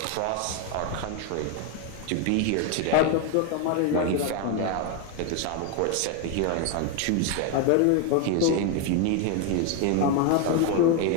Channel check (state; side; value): different; both; correlation 0.01